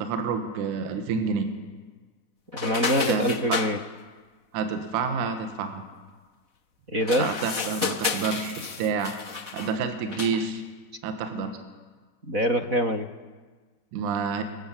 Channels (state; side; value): late; left; 4.1 ms